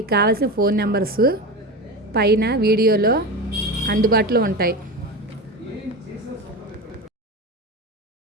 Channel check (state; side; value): normal; both; correlation 0.24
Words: కావాల్సిన ఫోన్ నెంబర్స్ పైన వీడియోలో అందుబాటులో ఉంటాయి.